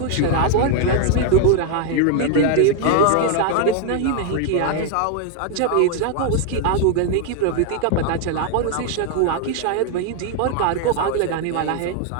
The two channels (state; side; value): different; both; correlation 0.00